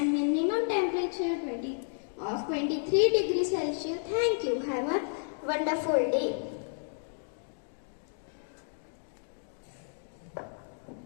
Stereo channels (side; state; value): right; silent; digital silence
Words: minimum temperature of 23 degrees Celsius. Thank you. Have a wonderful day.